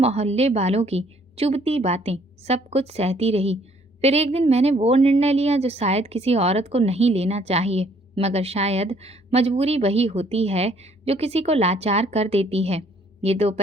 वालों की चुभती बातें, सब कुछ सहती रही। फिर एक दिन मैंने वो निर्णय लिया जो शायद किसी औरत को नहीं लेना चाहिए, मगर शायद मजबूरी वही होती है जो किसी को लाचार कर देती है। ये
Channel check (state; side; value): normal; both; correlation 0.63